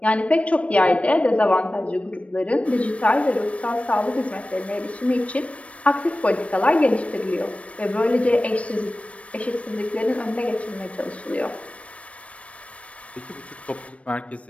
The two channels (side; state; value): right; late; 0.063 ms